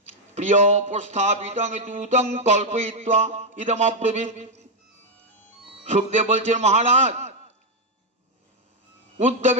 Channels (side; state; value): both; normal; correlation 0.02